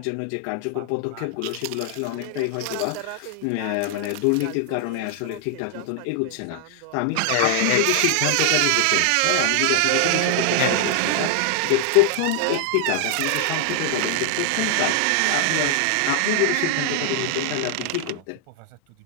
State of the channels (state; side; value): different; both; correlation 0.00